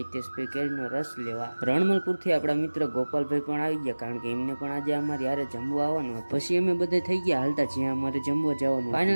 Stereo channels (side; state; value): both; inverted; correlation -1.00